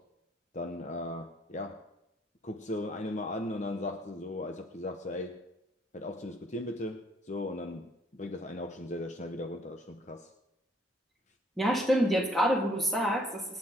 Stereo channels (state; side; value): normal; both; correlation 0.64